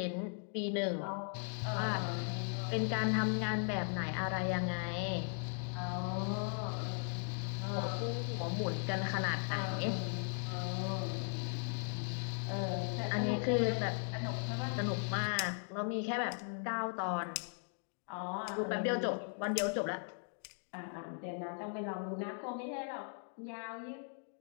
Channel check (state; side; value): silent; right; 52 dB below the other